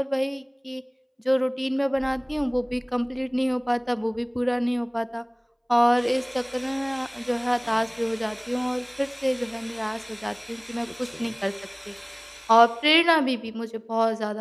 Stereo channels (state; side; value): identical; both; correlation 1.00